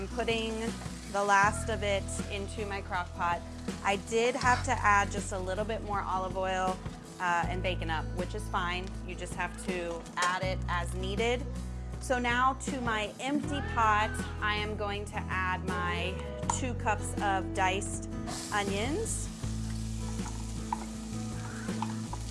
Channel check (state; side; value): identical; both; correlation 1.00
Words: putting the last of it into my crock pot. I did have to add just a little bit more olive oil and bacon up, which is fine. You just have to add it as needed. So now to my empty pot, I am going to add my 2 cups of diced onions.